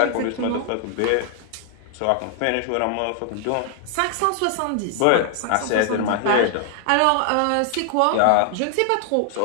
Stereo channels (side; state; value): both; different; correlation 0.00